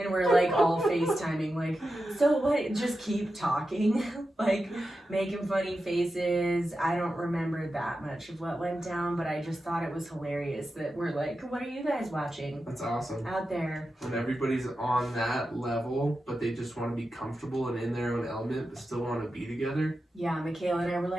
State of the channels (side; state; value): both; normal; correlation 0.91